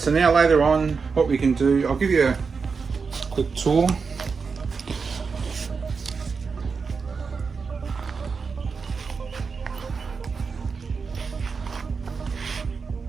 so now later on, what we can do, I'll give you a quick tour.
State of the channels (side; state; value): left; quieter; 5.1 dB